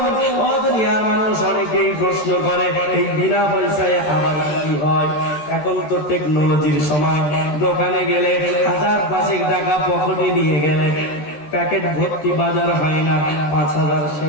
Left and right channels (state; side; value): late; right; 14 ms